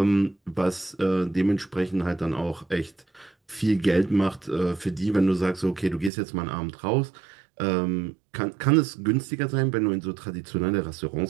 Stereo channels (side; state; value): left; drops out; at 6.1 s